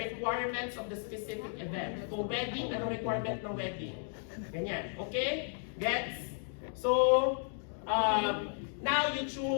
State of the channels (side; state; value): right; silent; 55 dB below the other